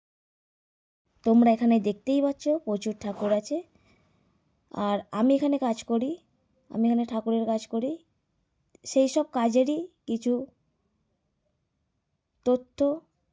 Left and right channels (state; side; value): identical; both; correlation 1.00